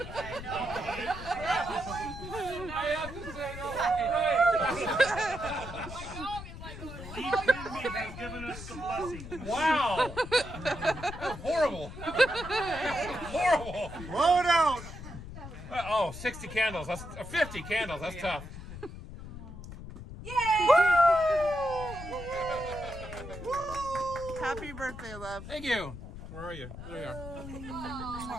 I have to say, Lead Quimby has given us the blessing. wow. Horrible. Horrible. Blow it out. 60 candles. That's 50 candles. That's tough. Happy birthday, love. Thank you. Where are you? There you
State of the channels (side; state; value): left; noise; rumble, 11 dB below the sound